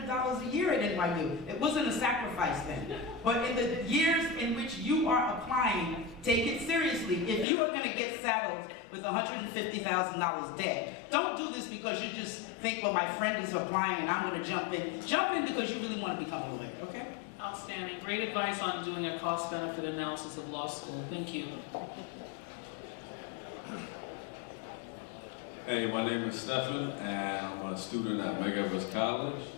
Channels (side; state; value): right; drops out; at 7.5 s